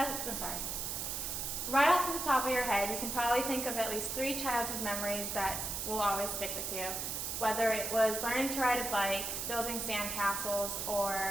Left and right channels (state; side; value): noise; right; hiss, 3 dB below the sound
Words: sorry. Right off the top of your head, you can probably think of at least 3 childhood memories that will always stick with you. Whether it was learning to ride a bike, building sandcastles,